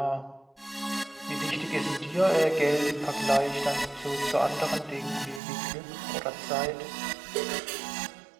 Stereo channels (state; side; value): drops out; left; at 5.4 s